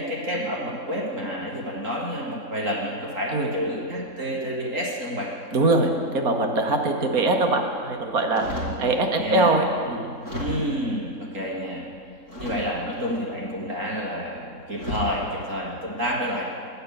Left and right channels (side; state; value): left; late; 3.7 ms